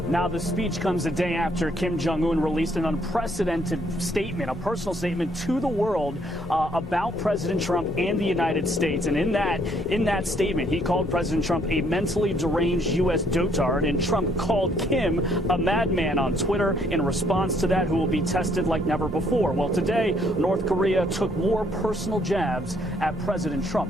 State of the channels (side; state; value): both; normal; correlation 0.67